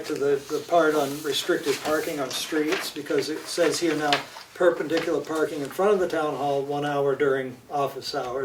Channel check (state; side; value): identical; both; correlation 1.00